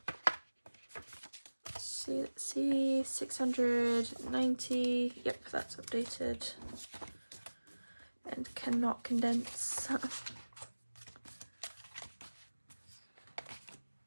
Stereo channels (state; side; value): inverted; both; correlation -1.00